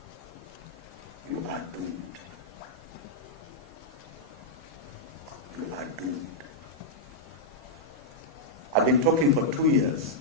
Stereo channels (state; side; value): normal; both; correlation -0.06